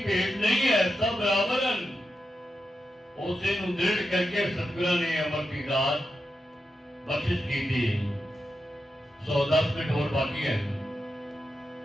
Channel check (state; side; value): normal; both; correlation 0.88